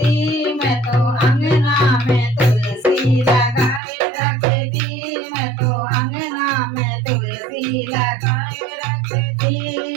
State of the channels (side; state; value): left; drops out; at 3.8 s